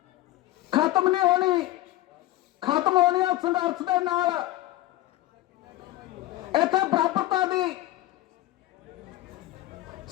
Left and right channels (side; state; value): right; quieter; 15.9 dB